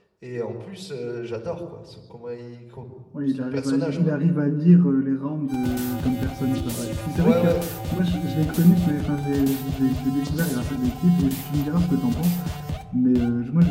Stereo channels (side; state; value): both; identical; correlation 1.00